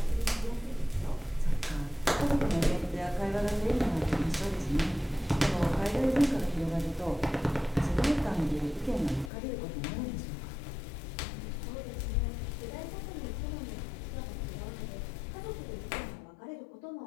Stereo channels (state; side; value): drops out; right; at 9.3 s